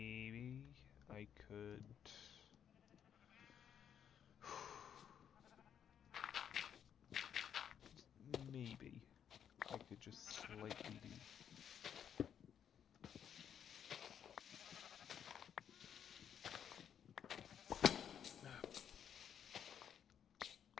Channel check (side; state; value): right; quieter; 8.7 dB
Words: I could. Maybe I could just slightly do.